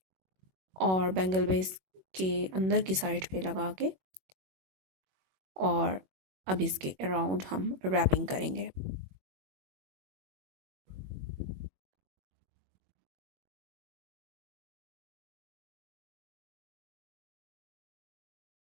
और बैंगल बेस के अंदर की साइड पे लगा के, और अब इसके अराउंड हम रैपिंग करेंगे।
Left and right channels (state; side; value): late; left; 21 ms